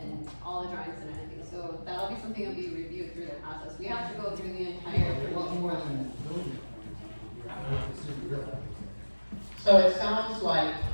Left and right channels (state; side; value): inverted; both; correlation -1.00